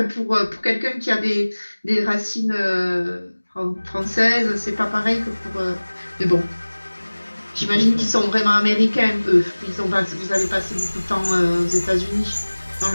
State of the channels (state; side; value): inverted; both; correlation -1.00